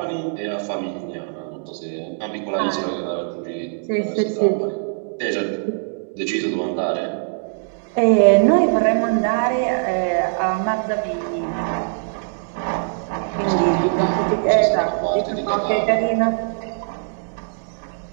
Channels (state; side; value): silent; left; digital silence